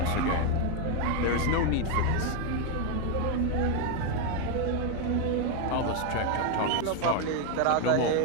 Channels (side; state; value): both; different; correlation 0.01